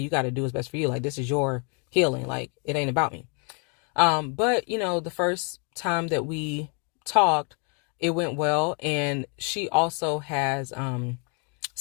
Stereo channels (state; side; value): quieter; right; 35.7 dB